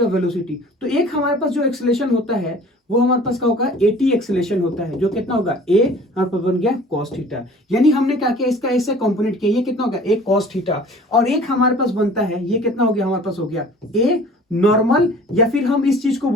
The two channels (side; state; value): both; normal; correlation 0.47